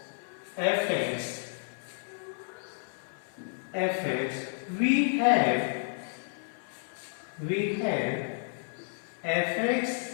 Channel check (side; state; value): right; silent; 57 dB below the other